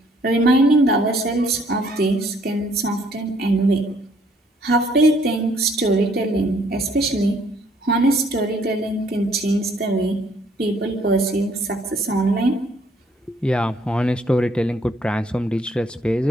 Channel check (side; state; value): both; normal; correlation 0.64